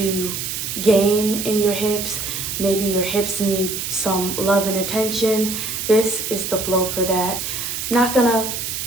gain in your hips. Maybe your hips need some love and attention. This is the flow for that. Not gonna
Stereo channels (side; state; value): right; noise; hiss, 4 dB below the sound